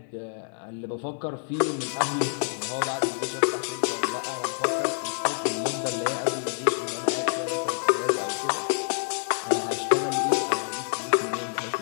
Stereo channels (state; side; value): silent; right; 57 dB below the other